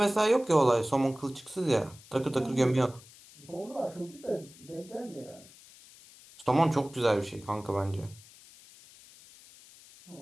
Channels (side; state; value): left; noise; hiss, 22 dB below the sound